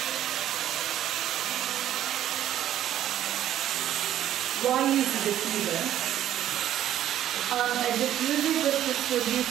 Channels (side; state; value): left; quieter; 11.7 dB